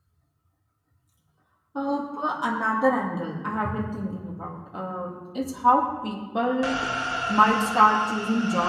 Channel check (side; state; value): both; identical; correlation 1.00